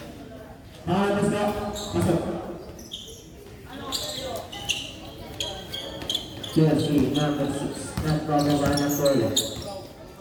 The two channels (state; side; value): identical; both; correlation 1.00